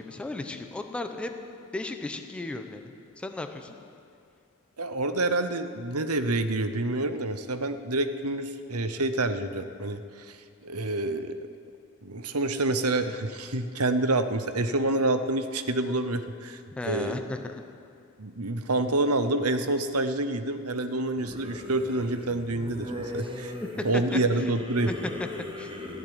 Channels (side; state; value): both; normal; correlation 0.04